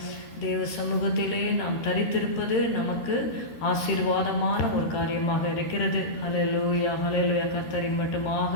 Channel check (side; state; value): right; late; 13 ms